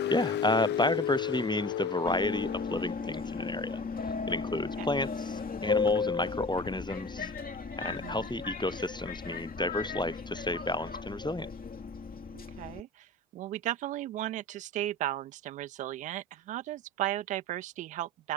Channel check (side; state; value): both; normal; correlation 0.37